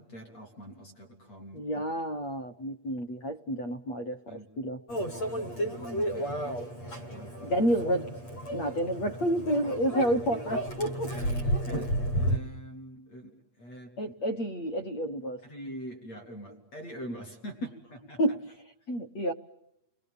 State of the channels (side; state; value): right; late; 8.5 ms